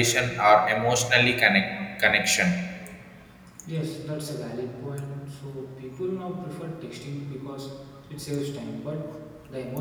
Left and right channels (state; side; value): identical; both; correlation 1.00